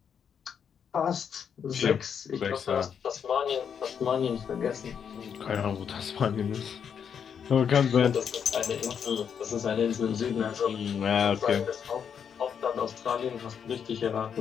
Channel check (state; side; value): quieter; right; 7.5 dB